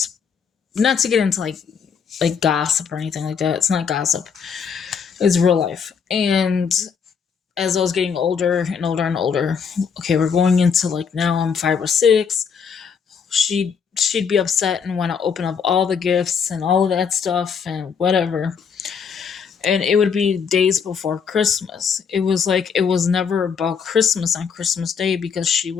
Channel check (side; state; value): right; quieter; 6.4 dB